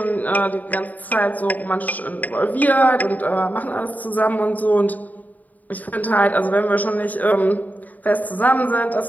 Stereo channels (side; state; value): right; late; 0.078 ms